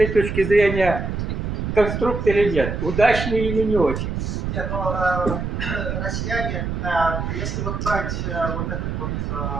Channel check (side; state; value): right; noise; rumble, 3 dB below the sound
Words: точки зрения конструкт или нет, удачный или не очень? Нет, ну, россияне, если вот брать вот этот вот